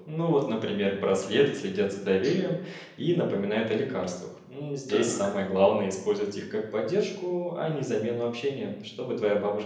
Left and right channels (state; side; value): identical; both; correlation 1.00